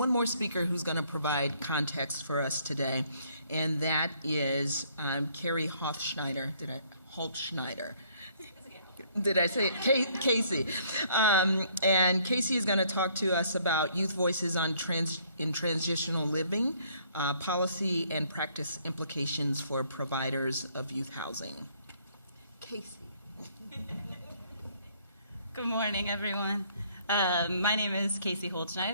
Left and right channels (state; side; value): inverted; both; correlation -0.64